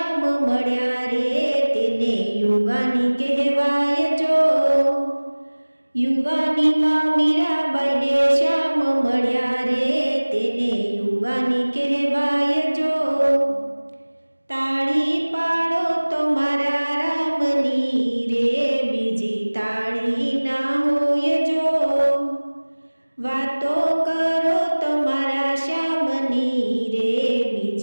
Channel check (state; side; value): inverted; both; correlation -1.00